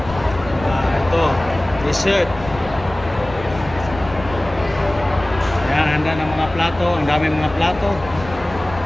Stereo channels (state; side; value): noise; left; rumble, 14 dB below the sound